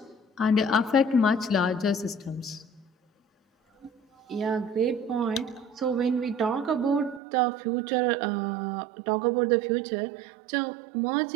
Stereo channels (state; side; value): drops out; left; at 7.2 s